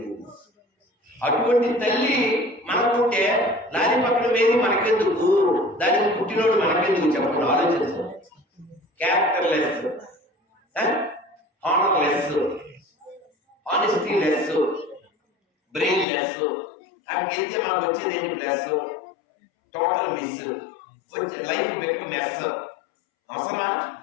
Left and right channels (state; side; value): drops out; right; at 16.1 s